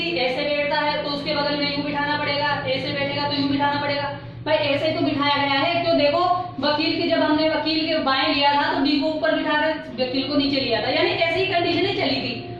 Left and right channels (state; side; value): identical; both; correlation 1.00